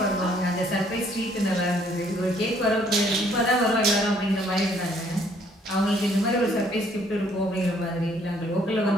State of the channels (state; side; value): normal; both; correlation 0.64